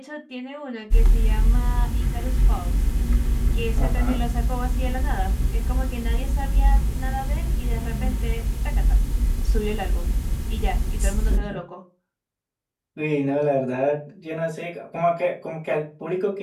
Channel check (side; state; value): both; identical; correlation 1.00